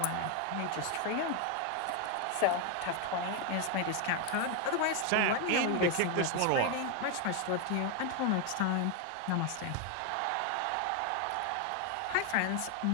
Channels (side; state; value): both; different; correlation 0.01